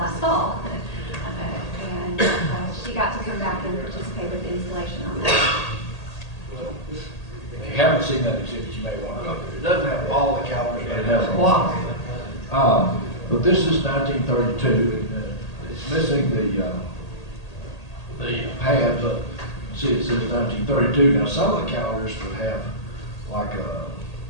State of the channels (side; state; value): right; late; 1.8 ms